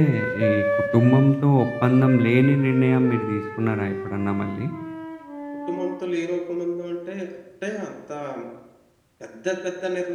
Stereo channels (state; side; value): identical; both; correlation 1.00